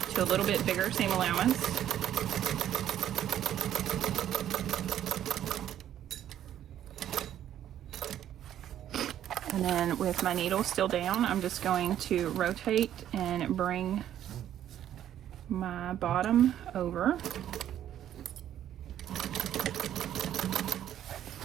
to a little bit bigger seam allowance. And then with my needle still down, I'm just going to rotate and bring my bottom over.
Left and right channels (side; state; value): left; quieter; 11.1 dB